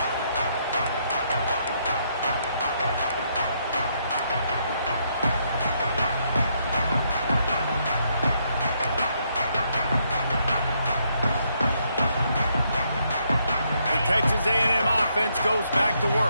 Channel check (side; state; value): both; inverted; correlation -0.75